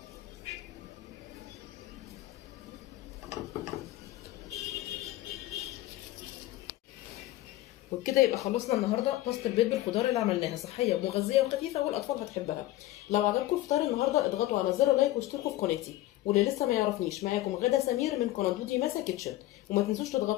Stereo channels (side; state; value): right; quieter; 15.9 dB